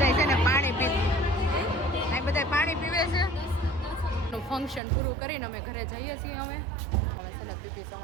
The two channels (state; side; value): drops out; left; at 4.8 s